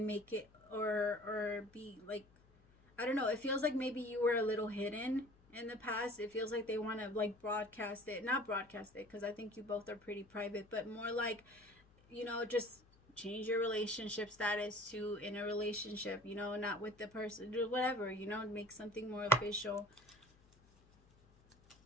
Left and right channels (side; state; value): left; noise; hum, 28 dB below the sound